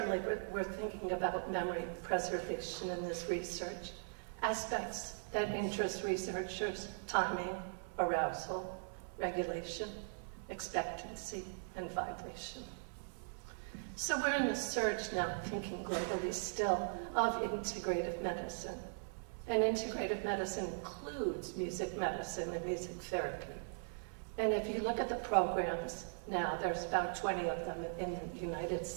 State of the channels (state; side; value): silent; left; 51 dB below the other